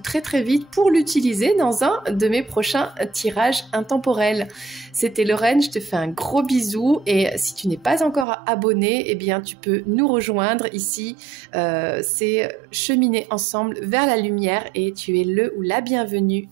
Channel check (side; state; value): left; drops out; at 8.2 s